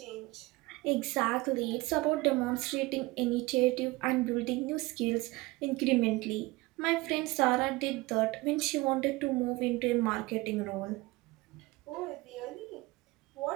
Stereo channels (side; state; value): left; quieter; 22.0 dB